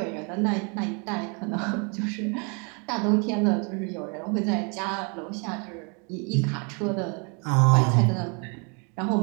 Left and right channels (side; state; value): left; quieter; 34.6 dB